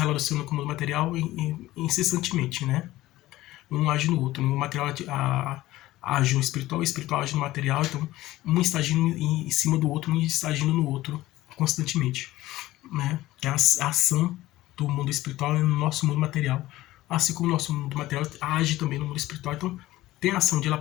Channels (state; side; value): quieter; right; 16.7 dB